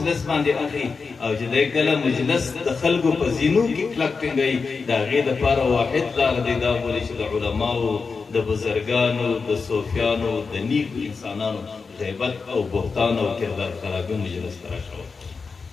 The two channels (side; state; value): right; quieter; 4.8 dB